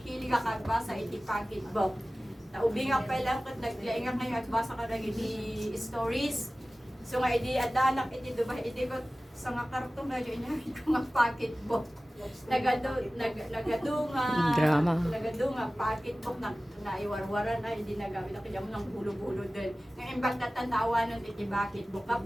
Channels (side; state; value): both; normal; correlation 0.97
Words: ka kagbasa, iti pocketbook. Naubi nga pa lang kat naglainga kayo at basa ka lang iti stories. So nga iti adanak iti diba iti ko sa nga kartong na yun niya ko nga pocketbook. Nagadunga pocketbook na naiwarwaran ay hindi nagamit na kaya mo ng bulo-bulo din. Ngayon bang tatanawa nun iti pocketbook.